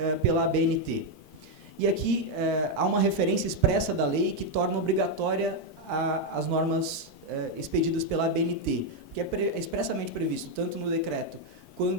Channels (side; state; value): both; normal; correlation 0.02